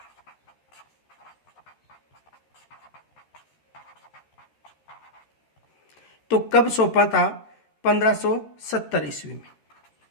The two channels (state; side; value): late; right; 13 ms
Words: तो कब सौंपा था? 1570 ईस्वी में।